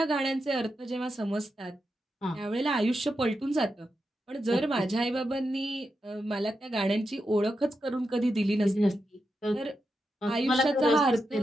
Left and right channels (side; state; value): both; normal; correlation 0.87